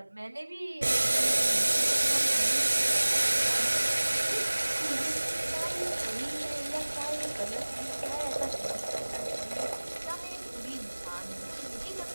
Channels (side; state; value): both; inverted; correlation -1.00